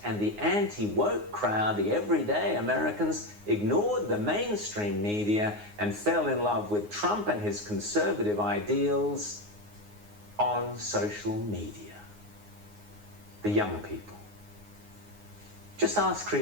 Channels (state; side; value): late; left; 9.6 ms